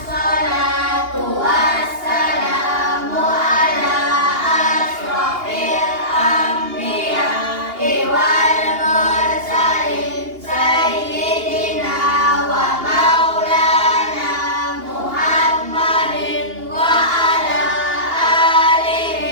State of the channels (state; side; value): late; left; 2.8 ms